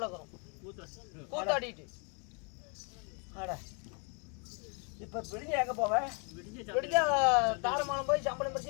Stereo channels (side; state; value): right; quieter; 37.2 dB